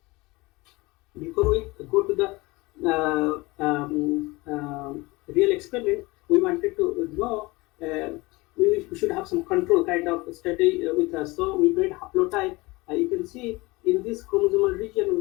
go to the real experiment, we wanted to know we should have some control kind of study with us. So we made haplotype. You can see in this chromosomal region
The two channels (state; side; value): quieter; right; 22.9 dB